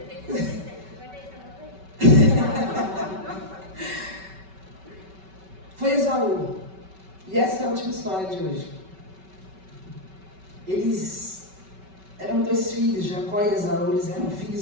Foi Esaú. E essa é a última história de hoje. Eles eram dois filhos, Jacó e Esaú, eles eram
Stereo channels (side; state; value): left; late; 5.2 ms